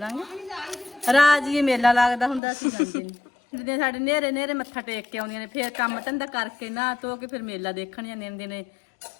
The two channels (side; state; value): right; drops out; at 2.4 s